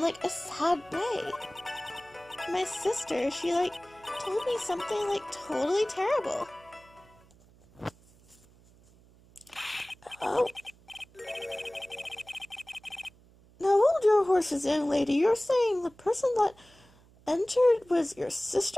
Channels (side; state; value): right; noise; hum, 27 dB below the sound